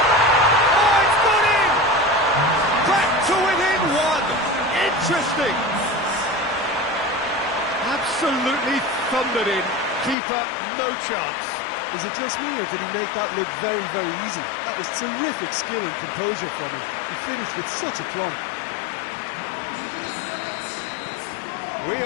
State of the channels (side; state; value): right; drops out; at 10.2 s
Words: Oh, it's gone in! Back to within one. Interesting. Absolutely thundered in. Keeper, no chance. Is it just me, or did he make that look very, very easy? That was terrific skill and composure from him. He finished with such aplomb. We